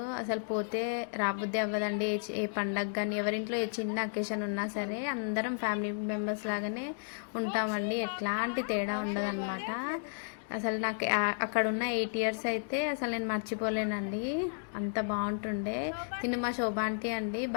అసలు పోతే రాబుద్ది అవ్వదండి. ఏ పండగ కానీ ఎవరింట్లో ఏ చిన్న అకేషన్ ఉన్నా సరే అందరం ఫ్యామిలీ మెంబర్స్ లాగానే ఉంటామండి. ఎట్లాంటి తేడా ఉండదన్నమాట. అసలు నాకు అక్కడ ఉన్న 8 ఇయర్స్ అయితే అసలు నేను మర్చిపోలేనండి, అంత బాగుంటుండే. తిను మా శోభ ఆంటీ అండి,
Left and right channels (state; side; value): silent; right; digital silence